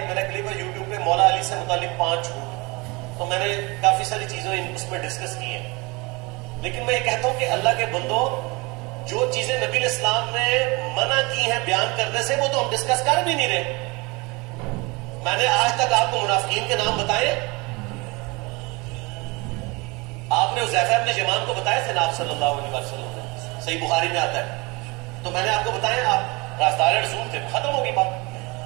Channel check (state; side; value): quieter; left; 26.0 dB